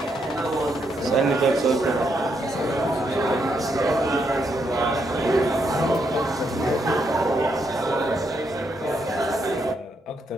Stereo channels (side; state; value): both; normal; correlation 0.78